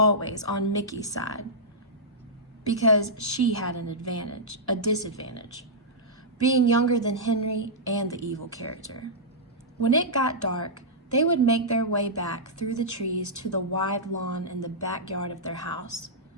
on Mickey's side, because she had a disadvantage, being younger than Henry and the evil character. When it got dark, they would make their way back through the trees to the wide lawn in the backyard of their house,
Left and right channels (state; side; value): normal; both; correlation -0.12